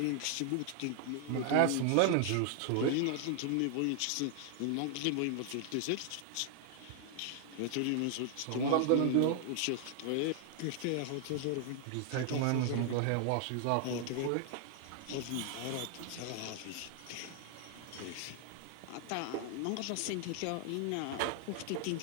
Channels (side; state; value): both; different; correlation 0.00